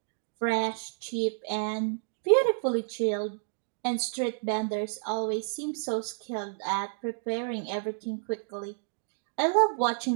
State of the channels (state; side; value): silent; left; digital silence